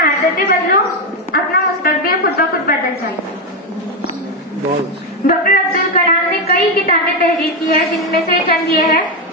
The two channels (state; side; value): normal; both; correlation 0.08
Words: बदलो, अपना मुस्तकबिल खुद ब खुद बदल जाएगा। डॉक्टर अब्दुल कलाम ने कई किताबें तहरीर की है, जिनमें से चंद ये है